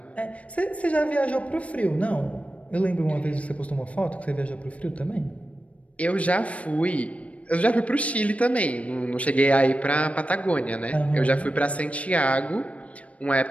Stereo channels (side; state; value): right; late; 0.065 ms